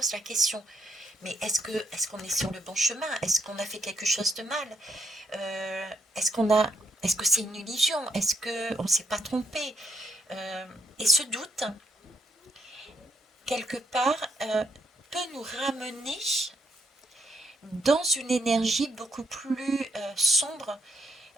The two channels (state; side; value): normal; both; correlation 0.76